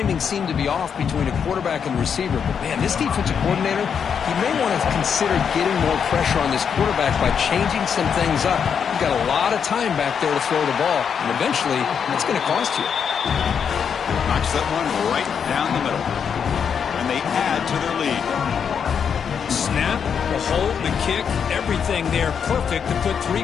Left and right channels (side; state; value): right; quieter; 7.1 dB